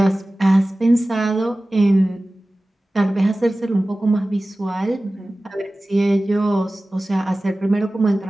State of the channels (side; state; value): both; normal; correlation 0.97